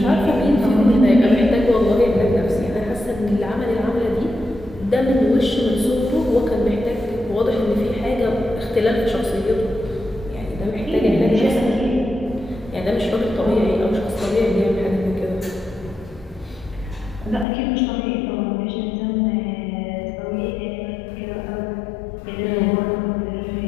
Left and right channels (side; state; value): right; drops out; at 17.4 s